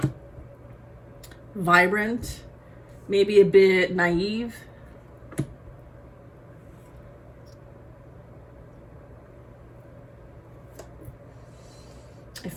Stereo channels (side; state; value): both; identical; correlation 1.00